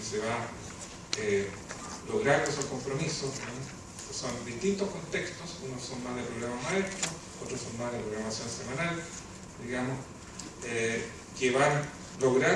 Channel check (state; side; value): identical; both; correlation 1.00